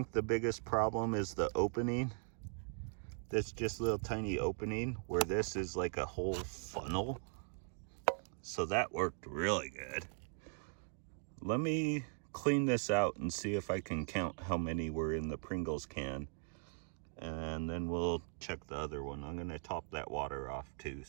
the biggest problem is the opening. That's just a little tiny opening, where this is like a whole funnel. So that worked really good. Let me clean this out and see if I can count how many were in the Pringles can. And then we'll check the other one. I'm gonna top that water off too,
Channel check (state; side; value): silent; left; 51 dB below the other